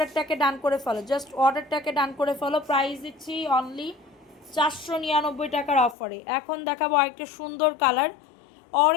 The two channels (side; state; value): right; drops out; at 6.0 s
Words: ডান করে ফেলো, জাস্ট অর্ডারটাকে ডান করে ফেলো। প্রাইস দিচ্ছি অনলি 499 টাকার অফারে। এখন দেখাবো আরেকটা সুন্দর কালার,